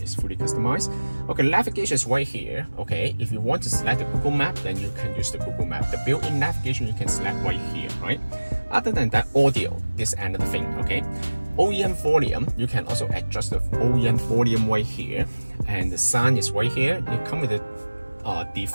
fully customized. Okay, navigation is right here. Okay, if you want to select the Google Map, then you can use the Google Map. The built-in navigation you can select right here, right? Other than that, audio, this is another thing. Okay, OEM volume, you can also adjust the OEM volume right here, and the sound is right here. You come with the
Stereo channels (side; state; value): both; inverted; correlation -1.00